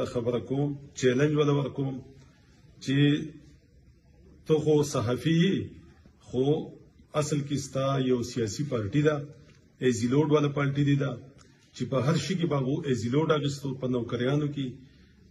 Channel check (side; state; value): both; identical; correlation 1.00